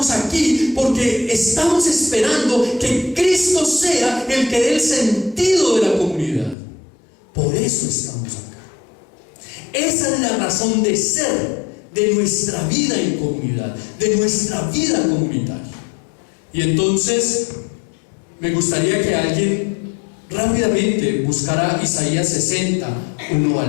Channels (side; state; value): right; drops out; at 6.6 s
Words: aquí porque estamos esperando que Cristo sea el que dé el sentido de la comunidad. Por eso estamos acá. Esa es la razón de ser de nuestra vida en comunidad, de nuestra vida comunitaria. Y entonces me gustaría que alguien rápidamente buscara Isaías 60, 1